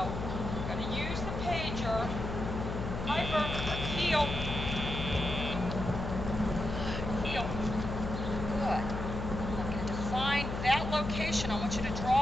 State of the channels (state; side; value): noise; left; hum, 4 dB below the sound